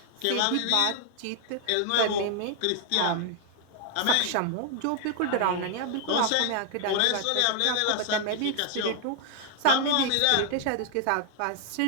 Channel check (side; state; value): both; different; correlation 0.00